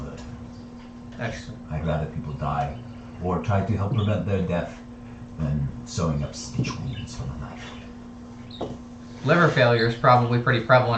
That's true. I'd rather people die or try to help prevent their death than sewing up stitch wounds from a knife. Liver failure is probably pretty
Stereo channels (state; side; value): identical; both; correlation 1.00